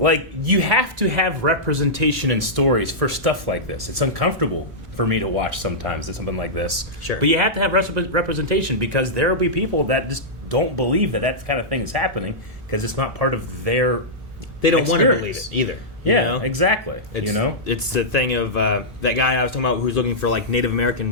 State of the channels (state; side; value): normal; both; correlation -0.12